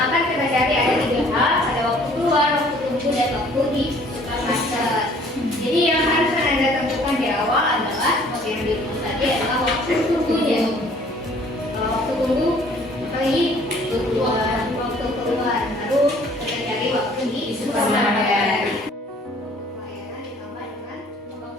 akan kita cari ada 3 hal, ada waktu keluar, waktu tunggu, dan waktu di supermarket. Jadi yang harus Anda tentukan di awal adalah seperti yang dirumus tadi adalah waktu tunggunya. Waktu tunggu kali keluar, waktu keluar, lalu kita cari waktu di supermarket. Pelayanan ditambah dengan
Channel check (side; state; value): both; normal; correlation 0.56